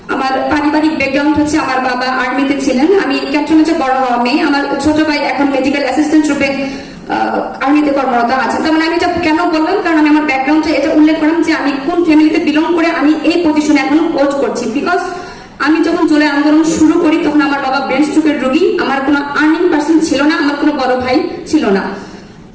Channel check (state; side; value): identical; both; correlation 1.00